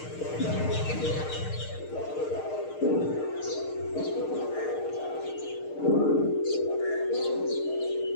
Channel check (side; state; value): right; late; 6.5 ms